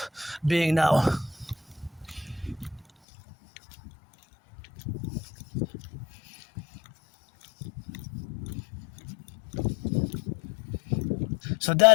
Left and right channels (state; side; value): drops out; right; at 2.9 s